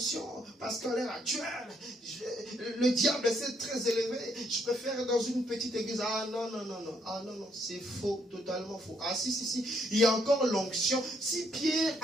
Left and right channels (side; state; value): both; normal; correlation 0.71